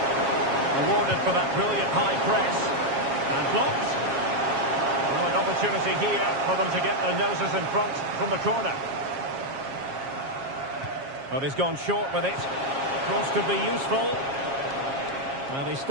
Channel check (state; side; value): late; left; 7.4 ms